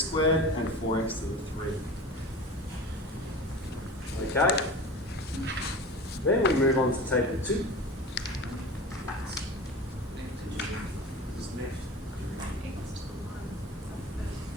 and 4x to the 3. Okay? Then we move on to table 2.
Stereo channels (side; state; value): both; normal; correlation 0.34